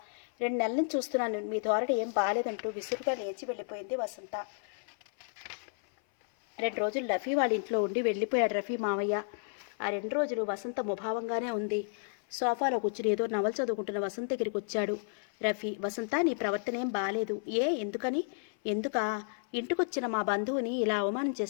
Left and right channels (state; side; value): silent; right; 56 dB below the other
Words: 2 నెలల నుంచి చూస్తున్నాను, మీ ధోరణి ఏం బాలేదంటూ విసురుగా లేచి వెళ్ళిపోయింది వసంత. 2 రోజులు రఫీ వాళ్ళ ఇంట్లో ఉండి వెళ్ళిపోయాడు రఫీ మావయ్య. ఆ 2 రోజులు వసంత ముభావంగానే ఉంది. సోఫాలో కూర్చుని ఏదో నవల చదువుకుంటున్న వసంత దగ్గరికి వచ్చాడు రఫీ. వసంత, నీ ప్రవర్తన ఏం బాలేదు. ఎందుకని? ఎందుకా? ఇంటికొచ్చిన మా బంధువుని ఇలా అవమానం